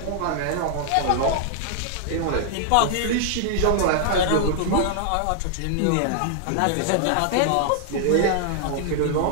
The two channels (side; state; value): both; different; correlation 0.00